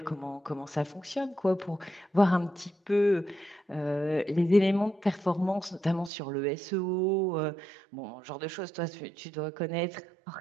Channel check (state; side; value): drops out; left; at 6.1 s